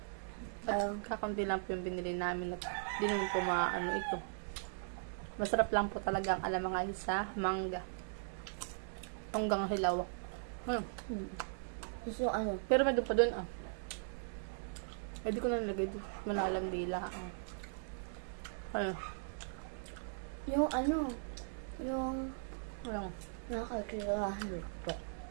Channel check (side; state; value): left; silent; digital silence